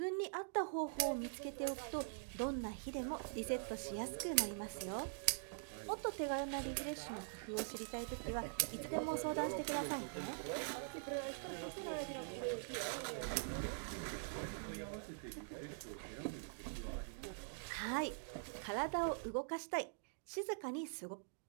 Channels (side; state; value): left; silent; digital silence